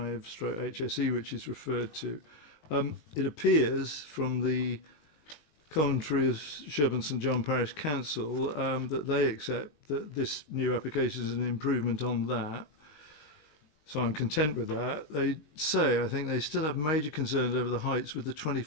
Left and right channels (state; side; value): late; right; 19 ms